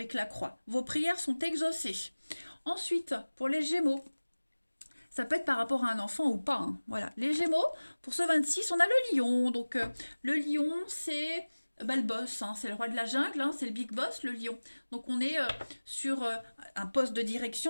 la croix. Vos prières sont exaucées. Ensuite, pour les Gémeaux, ça peut être par rapport à un enfant ou pas. Hein. Voilà, les Gémeaux, pour ce 26, on a le lion. Donc, le lion, c'est le boss, hein, c'est le roi de la jungle, hein, c'est le big boss, le lion. Donc, on est sur un poste de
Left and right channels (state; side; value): inverted; both; correlation -1.00